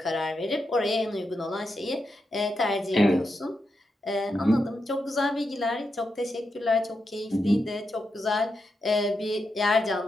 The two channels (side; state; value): both; normal; correlation 0.86